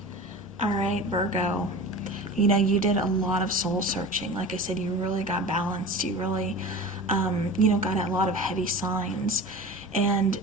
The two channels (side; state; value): both; normal; correlation 0.34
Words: All right, Virgo. You know, you did a lot of soul searching. Like I said, you really got balanced. You really, you know, got a lot of heavy signs. And